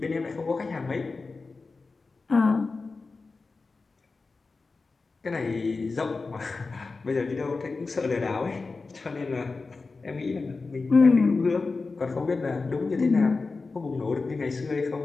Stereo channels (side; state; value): right; quieter; 4.0 dB